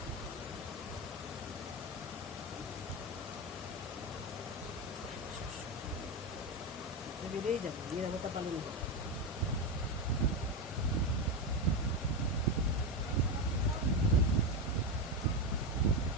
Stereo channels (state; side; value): normal; both; correlation 0.12